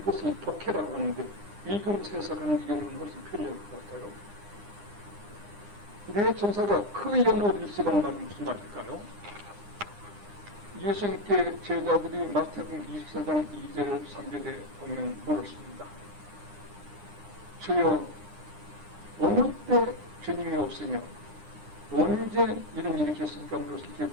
독해라고 하는데 읽으면서 해석하는 경우는 훨씬 편리할 것 같아요. 네 천사가 그 영월일시라는 말이 무슨 말일까요? 예수님께 제자들이 마태복음 24장 2절 3절에 보면 물었습니다. 주여 어느 때 주님이 오시며 언제 이런 일이 있겠습니까? 물었을 때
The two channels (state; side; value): late; left; 9.8 ms